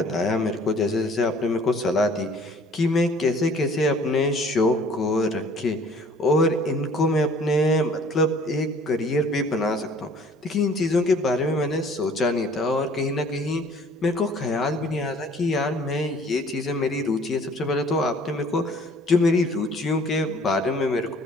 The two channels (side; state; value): both; normal; correlation 0.54